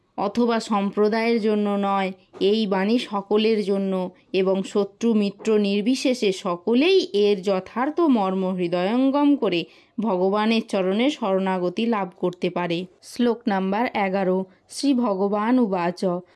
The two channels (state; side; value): identical; both; correlation 1.00